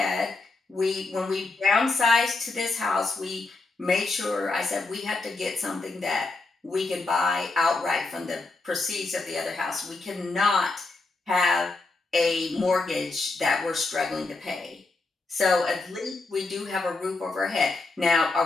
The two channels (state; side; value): quieter; right; 3.6 dB